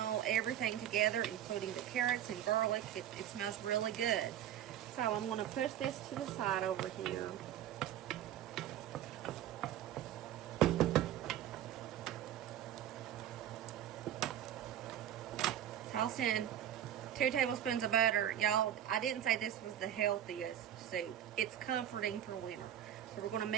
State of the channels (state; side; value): quieter; left; 11.0 dB